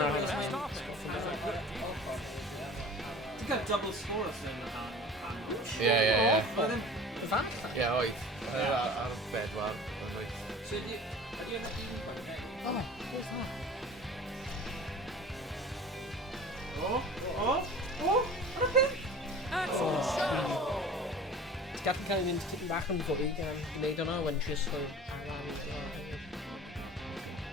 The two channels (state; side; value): normal; both; correlation 0.42